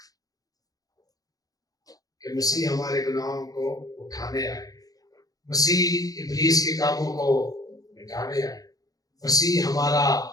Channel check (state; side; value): late; right; 0.18 ms